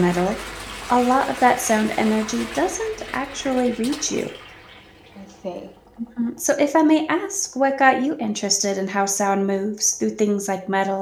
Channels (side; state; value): both; identical; correlation 1.00